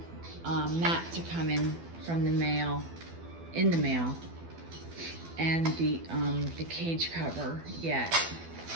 mat to come in from the mail, and the cage cover yet.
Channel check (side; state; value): left; late; 12 ms